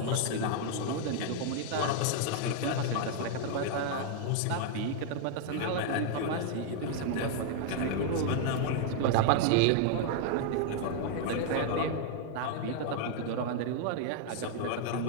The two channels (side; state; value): both; different; correlation 0.00